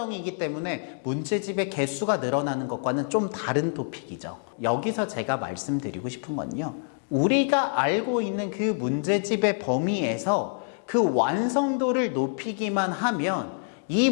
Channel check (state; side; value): silent; right; digital silence